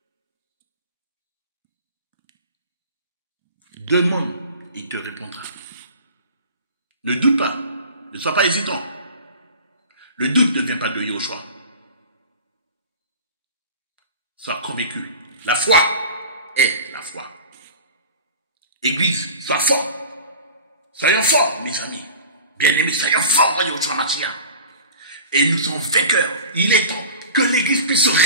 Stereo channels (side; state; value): both; inverted; correlation -0.38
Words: Demande, il te répondra. Ne doute pas, ne sois pas hésitant. Le doute ne vient pas de Yahushua. Sois convaincu. La foi est la foi. Église, sois fort. Soyons forts, mes amis. Bien-aimés, soyons forts, Yahushua Mashiach. Et nous sommes vainqueurs. Il est temps que l'Église puisse se